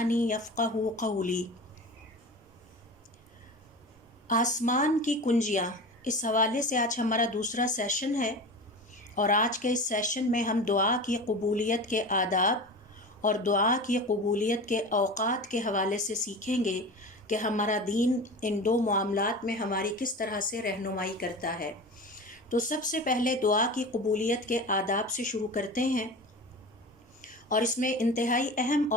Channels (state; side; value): normal; both; correlation 0.32